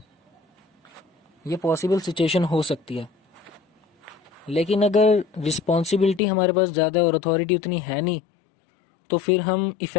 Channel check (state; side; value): drops out; right; at 6.2 s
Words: ये पॉसिबल सिचुएशन हो सकती है। लेकिन अगर रिस्पॉन्सिबिलिटी हमारे पास ज़्यादा है और अथॉरिटी उतनी है नहीं तो फिर हम